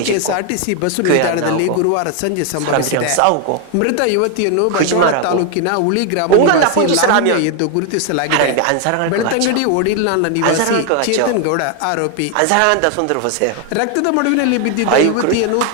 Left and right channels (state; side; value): different; both; correlation 0.01